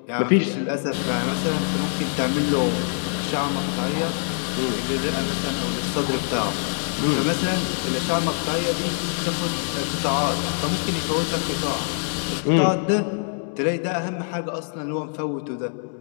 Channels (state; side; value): silent; right; 63 dB below the other